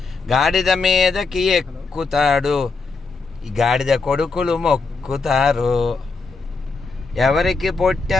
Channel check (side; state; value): right; quieter; 4.2 dB